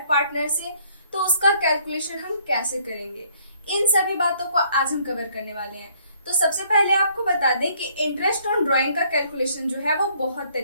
पार्टनर से, तो उसका कैलकुलेशन हम कैसे करेंगे, इन सभी बातों को आज हम कवर करने वाले हैं। तो सबसे पहले आपको बता दें कि इंटरेस्ट ऑन ड्राइंग का कैलकुलेशन जो है वो बहुत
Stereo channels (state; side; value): inverted; both; correlation -0.63